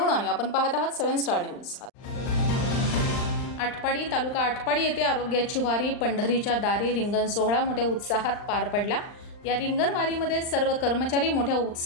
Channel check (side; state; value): right; late; 39 ms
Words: आणि आपण पाहत आहात 7 स्टार न्यूज। आटपाडी तालुका आटपाडी येथे आरोग्याची वारी पंढरीच्या दारी रिंगण सोहळा मोठ्या उत्साहात पार पडला। या रिंगण वारीमध्ये सर्व कर्मचारी मोठ्या